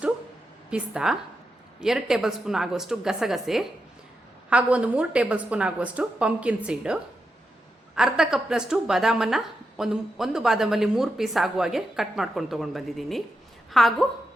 ಪಿಸ್ತಾ, 2 ಟೇಬಲ್ ಸ್ಪೂನ್ ಆಗುವಷ್ಟು ಗಸಗಸೆ, ಹಾಗೂ ಒಂದು 3 ಟೇಬಲ್ ಸ್ಪೂನ್ ಆಗುವಷ್ಟು ಪಂಪ್ಕಿನ್ ಸೀಡು, ಅರ್ಧ ಕಪ್ನಷ್ಟು ಬಾದಾಮನ್ನು ಒಂದು ಬಾದಾಮಲ್ಲಿ 3 ಪೀಸ್ ಆಗುವ ಹಾಗೆ ಕಟ್ ಮಾಡ್ಕೊಂಡು ತೊಗೊಂಡು ಬಂದಿದ್ದೀನಿ. ಹಾಗೂ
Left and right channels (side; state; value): both; normal; correlation 0.87